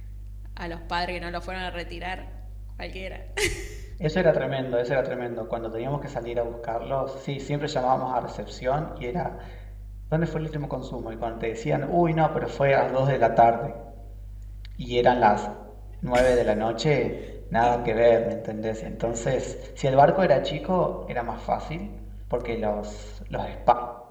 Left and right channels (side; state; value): both; identical; correlation 1.00